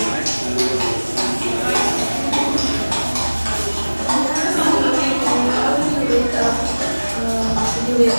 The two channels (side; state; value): both; inverted; correlation -1.00